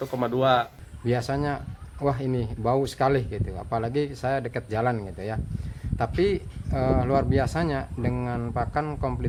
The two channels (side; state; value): both; identical; correlation 1.00